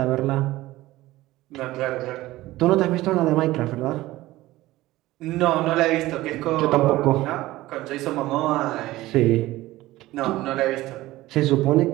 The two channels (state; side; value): quieter; left; 17.3 dB